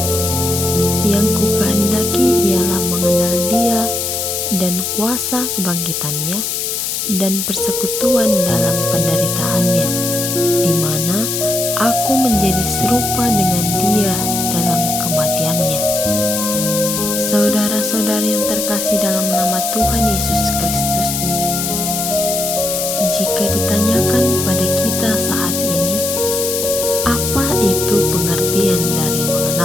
Yang kukehendaki ialah mengenal Dia dan kuasa kebangkitannya dan persekutuan dalam penderitaannya, di mana aku menjadi serupa dengan Dia dalam kematiannya. Saudara-saudari yang terkasih dalam nama Tuhan Yesus Kristus, jika ditanyakan pada kita saat ini, apa itu pengertian dari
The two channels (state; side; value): noise; left; hiss, 2 dB below the sound